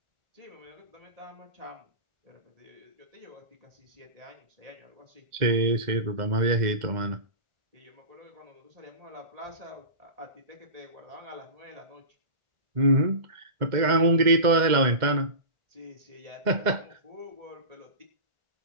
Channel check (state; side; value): late; left; 2.1 ms